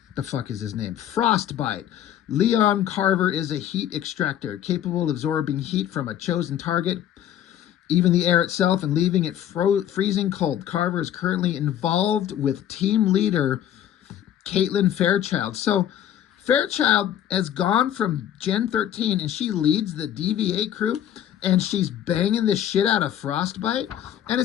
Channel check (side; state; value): right; quieter; 10.8 dB